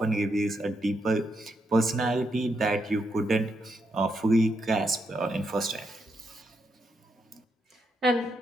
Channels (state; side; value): normal; both; correlation 0.81